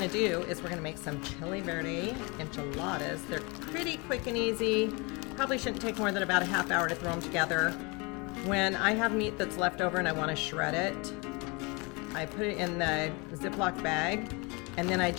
do is we're gonna make some Chile Verde enchiladas. They're pretty quick and easy. Probably shouldn't take more than about a half hour to throw them together. When I have meat that's left over and I wanna shred it, I put it in the Ziploc bag, and then I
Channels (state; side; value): quieter; right; 28.3 dB